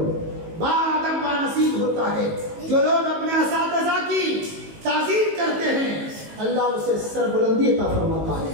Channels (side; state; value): left; late; 19 ms